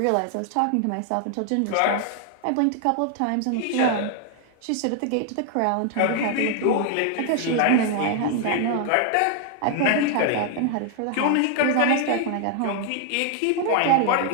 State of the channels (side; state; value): both; different; correlation 0.00